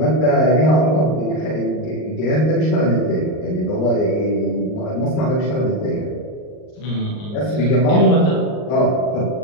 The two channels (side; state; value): right; late; 39 ms